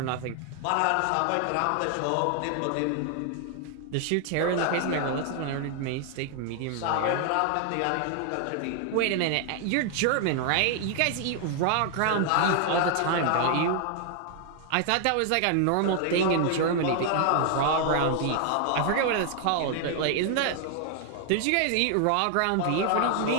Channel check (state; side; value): different; both; correlation 0.00